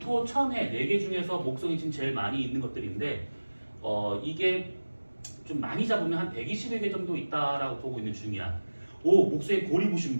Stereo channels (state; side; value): inverted; both; correlation -1.00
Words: 천해 4개 중에서 목성이 지금 제일 많이 있는 것들인데 이게 좀 많이 잡으면 한 120여 개 정도 있다라고 보고 있는 중이야. 목성에 고리 보신